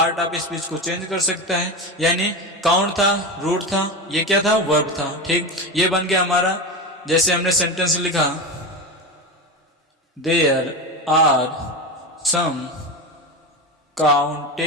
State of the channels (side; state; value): both; normal; correlation 0.21